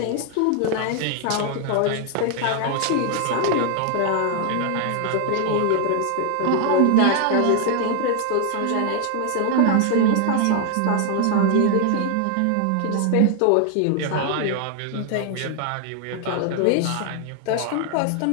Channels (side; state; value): both; different; correlation 0.00